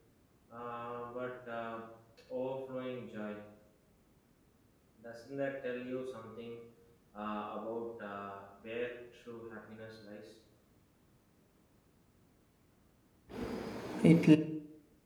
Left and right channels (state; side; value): identical; both; correlation 1.00